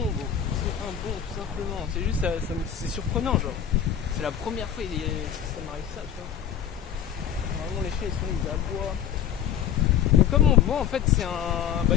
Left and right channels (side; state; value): right; quieter; 9.1 dB